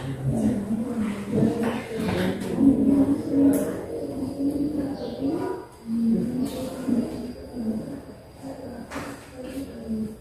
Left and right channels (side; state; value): both; identical; correlation 1.00